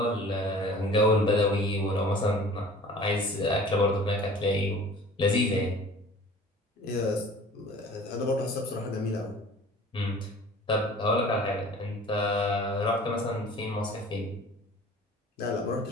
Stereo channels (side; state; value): both; normal; correlation 0.45